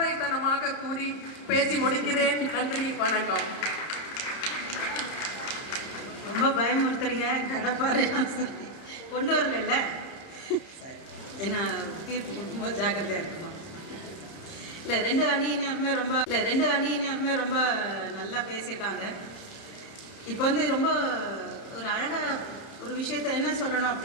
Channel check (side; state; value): right; late; 30 ms